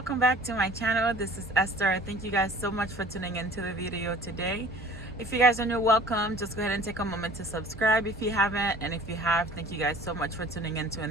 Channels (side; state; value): both; normal; correlation 0.47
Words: back to my channel. This is Esther. Thank you guys so much for tuning into the video today. If you guys are new, welcome. Just go ahead and take a moment to subscribe if you haven't, and if you have, thank you guys so much for tuning into